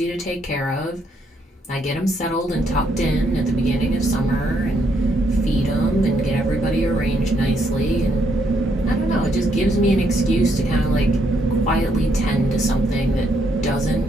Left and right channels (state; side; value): normal; both; correlation 0.74